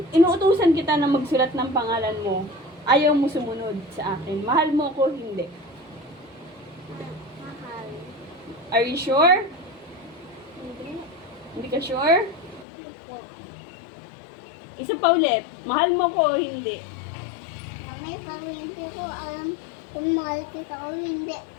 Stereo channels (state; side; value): drops out; right; at 12.7 s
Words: inuutusan kita na magsulat ng pangalan mo, ayaw mo sumunod sa akin. Mahal mo ko, hindi. Mahal. Are you sure? Hindi. Hindi ka sure? Po. Isa pa ulit. Mahal mo ko o hindi? Mami, parang hindi ko alam kung mahal kita o hindi.